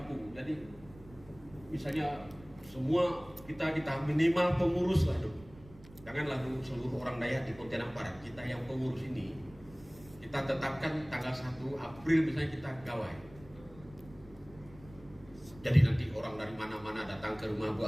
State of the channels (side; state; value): right; noise; rumble, 21 dB below the sound